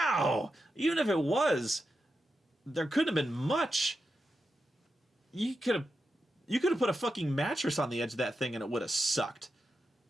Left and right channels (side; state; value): both; normal; correlation 0.88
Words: Even if it was, there couldn't have been much. You could have put a fucking mattress on the edge of that thing and it would have sucked.